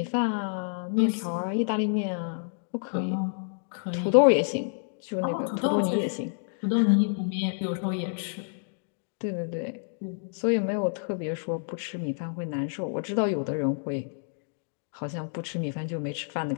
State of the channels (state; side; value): silent; right; digital silence